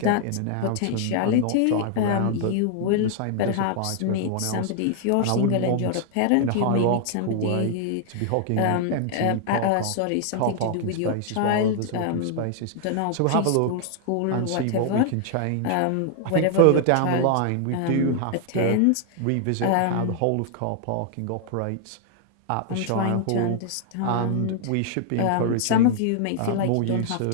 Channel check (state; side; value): different; both; correlation 0.00